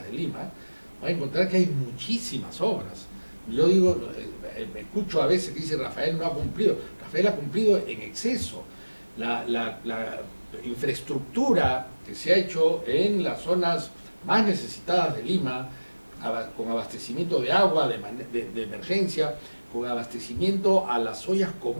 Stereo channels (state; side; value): inverted; both; correlation -1.00